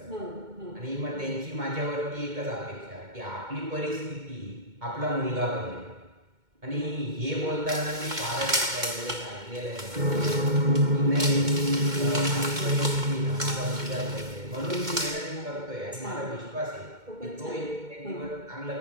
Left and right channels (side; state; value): left; late; 2.2 ms